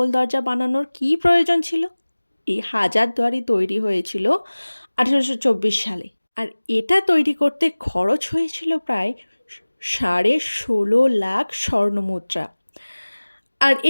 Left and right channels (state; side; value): inverted; both; correlation -1.00